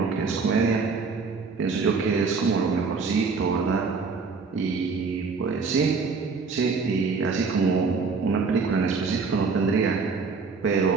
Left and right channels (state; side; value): quieter; left; 4.8 dB